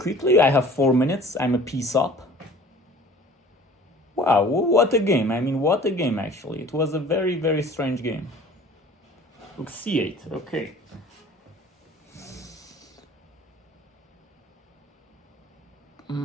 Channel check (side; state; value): both; normal; correlation 0.47